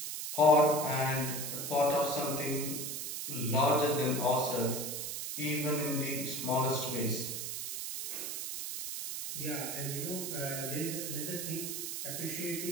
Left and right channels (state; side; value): noise; right; hiss, 4 dB below the sound